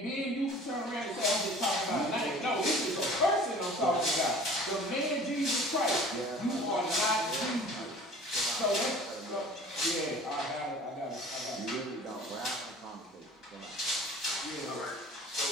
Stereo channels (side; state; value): both; normal; correlation 0.46